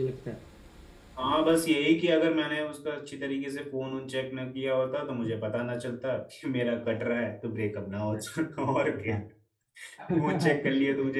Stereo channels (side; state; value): both; identical; correlation 1.00